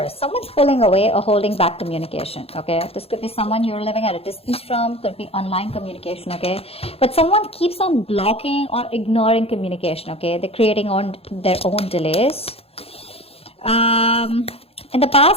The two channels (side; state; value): right; late; 0.28 ms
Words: Someone's pulling away or holding back communication, okay? This could be someone you're living at a distance from, could be online communication, okay? But someone keeps on blocking or ignoring communication, okay? They're creating their own delays. In the